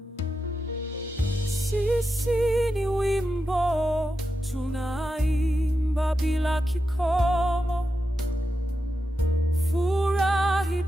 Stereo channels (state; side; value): normal; both; correlation 0.89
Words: Sisi ni wimbo tunaimba bila kikomo, furahi